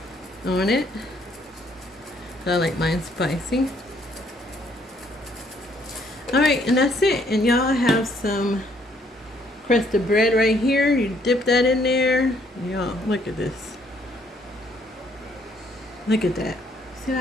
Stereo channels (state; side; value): normal; both; correlation 0.67